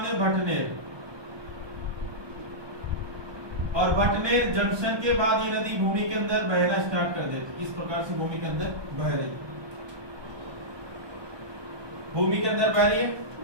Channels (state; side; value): late; left; 1.2 ms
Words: है भटनेर, और भटनेर जंक्शन के बाद ये नदी भूमि के अंदर बहना स्टार्ट कर देती। इस प्रकार से भूमि के अंदर बह रही, भूमि के अंदर बह रही है